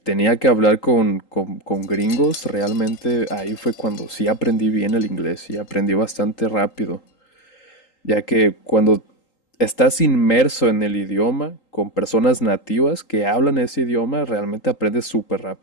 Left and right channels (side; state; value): right; late; 3.8 ms